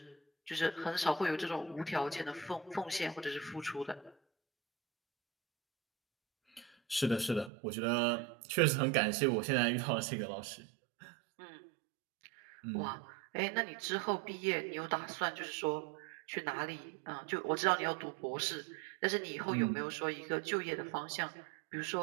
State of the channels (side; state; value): left; drops out; at 7.5 s